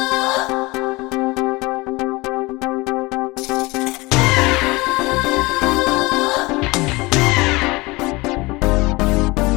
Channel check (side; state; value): right; quieter; 23.2 dB